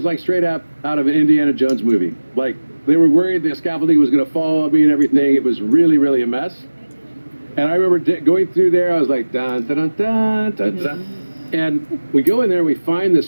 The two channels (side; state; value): both; inverted; correlation -1.00